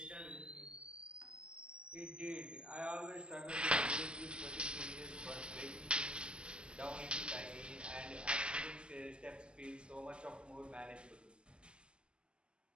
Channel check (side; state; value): left; late; 0.050 ms